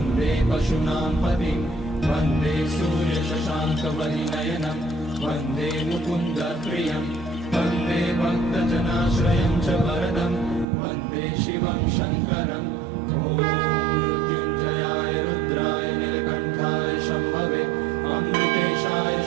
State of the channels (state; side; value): drops out; left; at 10.7 s